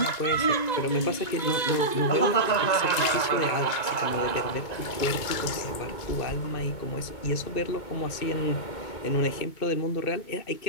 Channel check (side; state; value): right; late; 2.2 ms